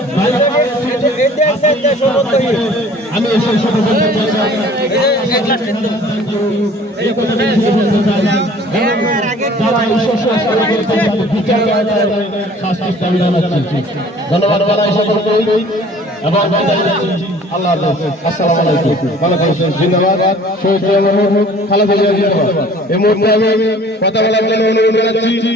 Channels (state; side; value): normal; both; correlation 0.50